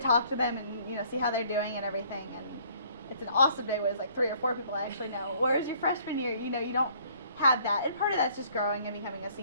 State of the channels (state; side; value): inverted; both; correlation -0.59